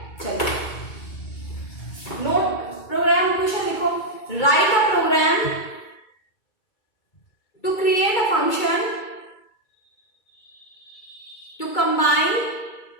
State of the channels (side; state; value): right; late; 2.3 ms